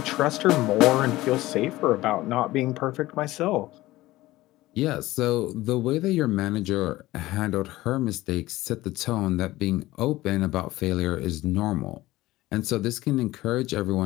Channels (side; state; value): right; quieter; 17.6 dB